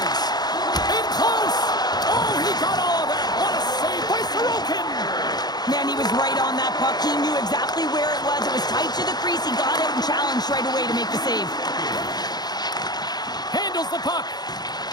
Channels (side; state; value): right; late; 0.20 ms